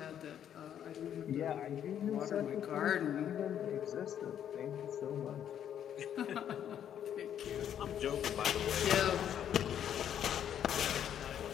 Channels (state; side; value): quieter; right; 9.7 dB